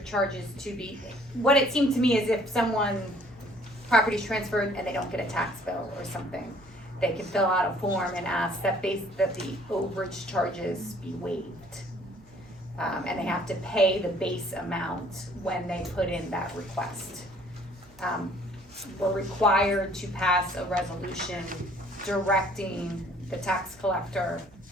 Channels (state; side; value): noise; right; hum, 27 dB below the sound